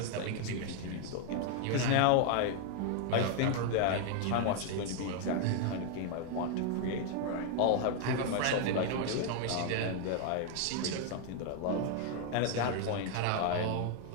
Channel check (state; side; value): different; both; correlation 0.00